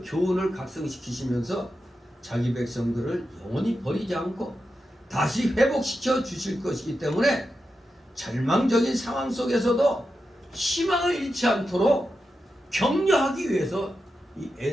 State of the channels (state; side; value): normal; both; correlation 0.89